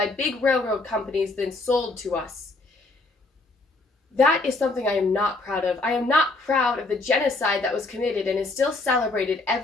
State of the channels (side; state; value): right; quieter; 3.2 dB